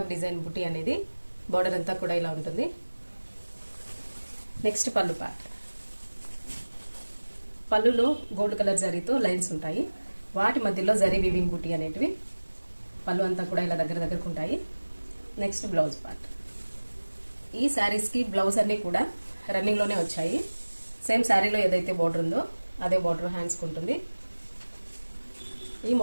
డిజైన్ బుటీ అనేది బోర్డర్ అంతా కూడా ఇలా ఉంటుంది. నెక్స్ట్ పళ్ళు పార్ట్. పళ్ళులో గోల్డ్ కలర్ జరీతో లైన్స్ ఉంటాయి. వాటి మధ్యలో జరీ వీవింగ్ బుటీ అనేటివి పళ్ళు అంతా కూడా ఇలా దగ్గరకు ఉంటాయి. Next blouse part. ఈ శారీస్ కి బ్లౌజ్ అన్ని కూడా రన్నింగ్ లోనే వచ్చాయి. సేమ్ శారీలో ఏదైతే బోర్డర్ ఉందో అదే బోర్డర్ హ్యాండ్స్ కు ఉంటుంది. ఈ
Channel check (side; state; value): both; inverted; correlation -1.00